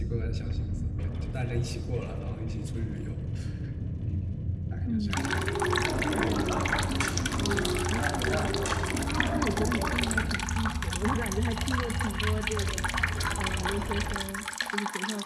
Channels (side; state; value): both; identical; correlation 1.00